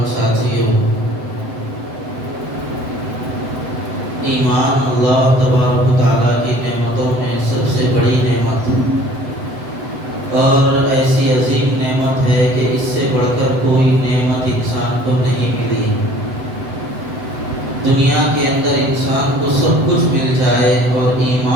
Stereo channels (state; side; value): late; left; 7.9 ms